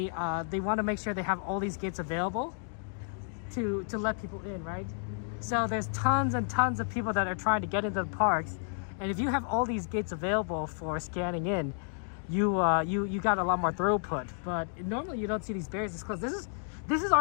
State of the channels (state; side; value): silent; right; 57 dB below the other